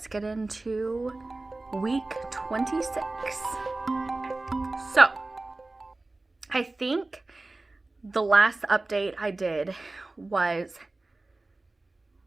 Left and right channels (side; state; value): left; quieter; 3.1 dB